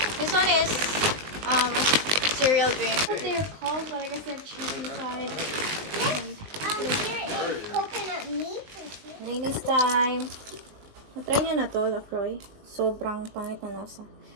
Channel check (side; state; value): left; late; 19 ms